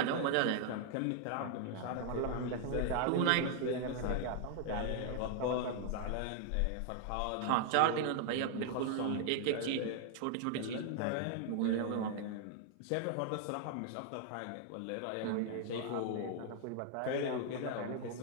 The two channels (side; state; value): both; different; correlation 0.00